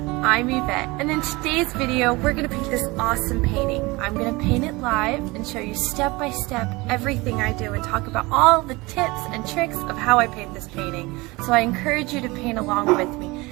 I'm Yvette, and in today's video we're going to paint this awesome painting. I'm going to paint it live and show you step by step everything I do and talk about all the tips and tricks of how I paint this painting. So I encourage you to paint along with me.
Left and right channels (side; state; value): left; quieter; 23.2 dB